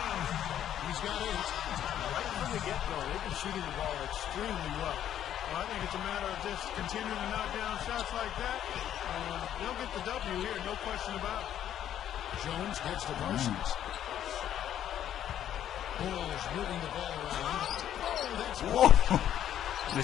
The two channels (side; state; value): right; quieter; 10.7 dB